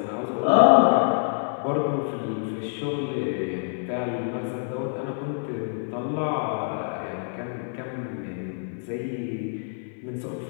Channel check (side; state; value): right; silent; 56 dB below the other